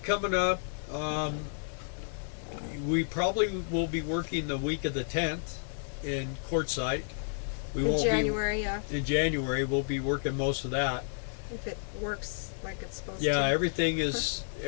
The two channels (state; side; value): silent; right; digital silence